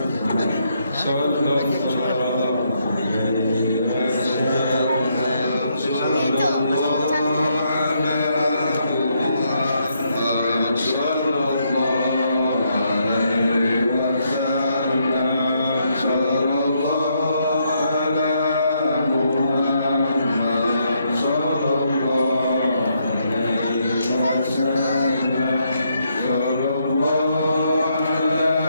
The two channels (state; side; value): inverted; both; correlation -0.76